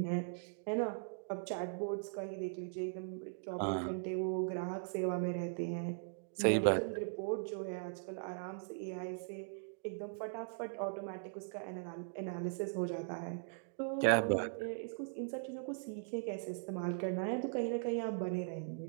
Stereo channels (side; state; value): left; silent; digital silence